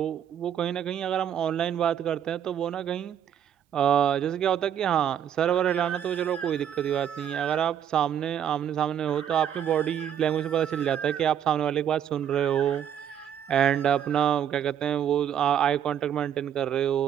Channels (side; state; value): left; quieter; 9.4 dB